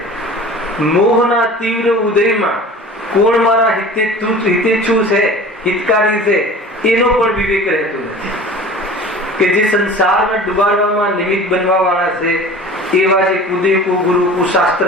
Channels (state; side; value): normal; both; correlation 0.41